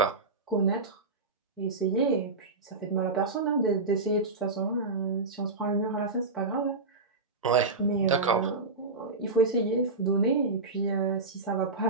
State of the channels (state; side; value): quieter; left; 3.7 dB